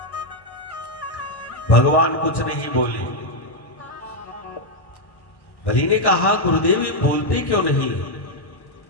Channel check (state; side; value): late; right; 1.1 ms